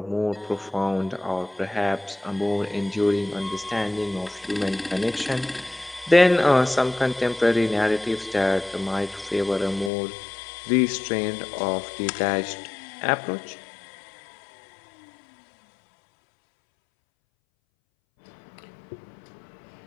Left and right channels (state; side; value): drops out; right; at 9.9 s